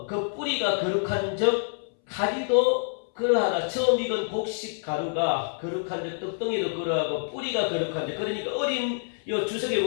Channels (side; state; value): right; silent; 60 dB below the other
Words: 그 뿌리가 거룩한 적 가지도 그러하다. 처음 익은 곡식 가루가 거룩한 적 떡덩이도 그러하고 뿌리가 거룩한 적 그러니까 어린 요 주석에